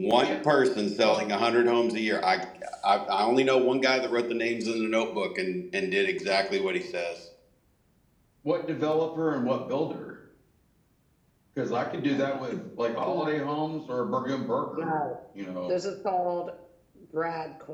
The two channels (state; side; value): identical; both; correlation 1.00